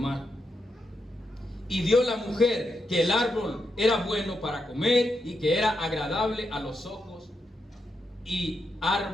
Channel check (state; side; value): normal; both; correlation 0.84